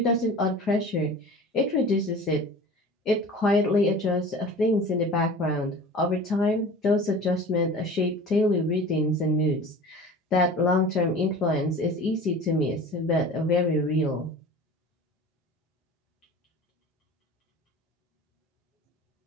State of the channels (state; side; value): normal; both; correlation 0.39